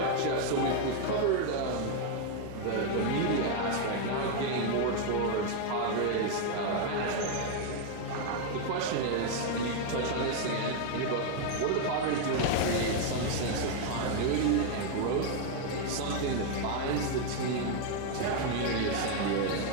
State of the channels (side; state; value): both; different; correlation 0.01